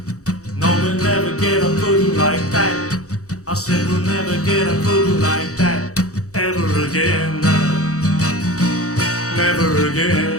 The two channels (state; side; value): late; right; 0.65 ms